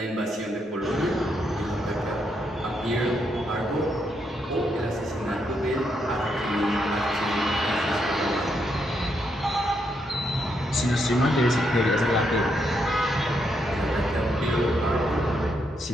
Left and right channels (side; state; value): both; normal; correlation 0.78